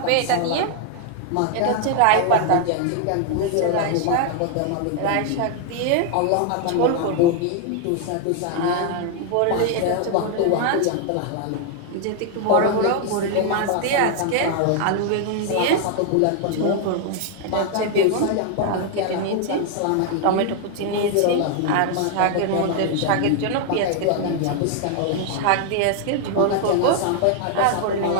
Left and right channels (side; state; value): both; different; correlation 0.00